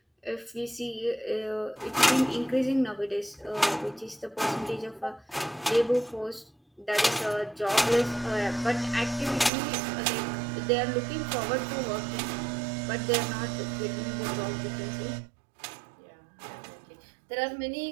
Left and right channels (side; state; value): left; drops out; at 9.5 s